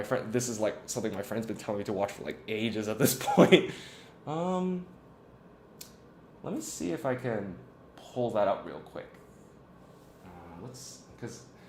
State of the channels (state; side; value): identical; both; correlation 1.00